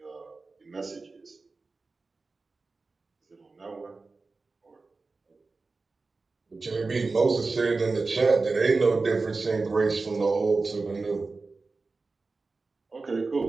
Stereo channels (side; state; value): left; quieter; 3.9 dB